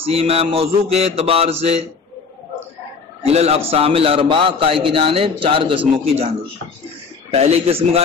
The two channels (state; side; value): quieter; right; 5.1 dB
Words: ہے موضوع کے اعتبار سے الى الاقسام الاربع، قائل کی جانب 4 قسموں کی جانب. پہلی قسم کا